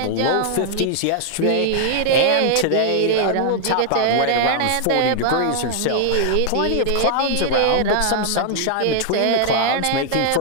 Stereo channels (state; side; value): different; both; correlation -0.01